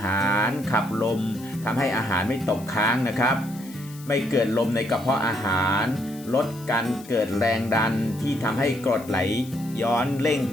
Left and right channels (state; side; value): noise; left; hiss, 20 dB below the sound